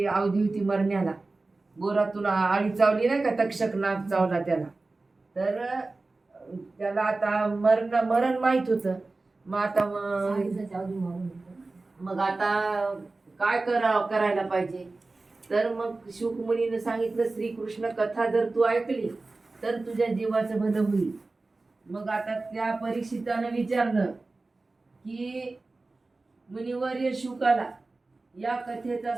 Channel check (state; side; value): quieter; left; 3.4 dB